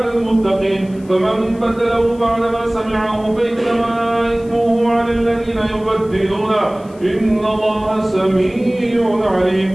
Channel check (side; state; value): left; noise; hiss, 27 dB below the sound